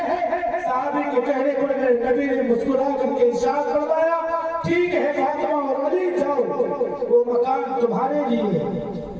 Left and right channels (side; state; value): both; identical; correlation 1.00